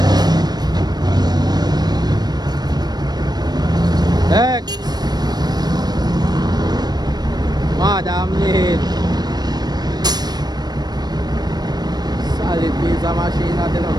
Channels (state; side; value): late; left; 0.19 ms